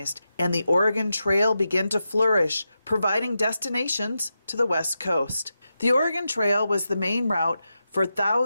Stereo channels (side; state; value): both; inverted; correlation -0.89